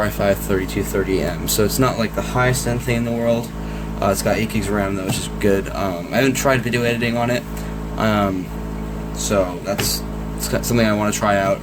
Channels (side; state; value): both; identical; correlation 1.00